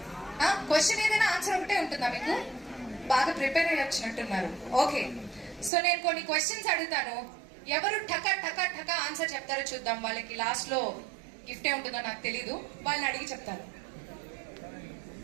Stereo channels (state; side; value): drops out; left; at 5.7 s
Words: క్వశ్చన్ ఏదైనా ఆన్సర్ ఒకటే ఉంటుందా మీకు? బాగా ప్రిపేర్ అయ్యి వచ్చినట్టున్నారు. ఓకే, సో నేను కొన్ని క్వశ్చన్స్ అడుగుతాను, ఎవరు టకా టకా టకా ఆన్సర్ చెప్తారో చూద్దాం. వాళ్ళకి లాస్ట్ లో గిఫ్ట్ ఏ ఉంటుందో నాకు తెలీదు, వాళ్ళని అడిగి చెప్తాను.